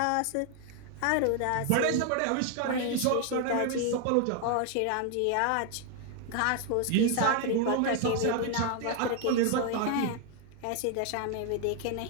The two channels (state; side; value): different; both; correlation 0.00